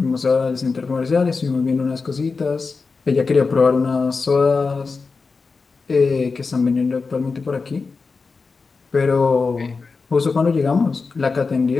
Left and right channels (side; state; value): right; quieter; 4.5 dB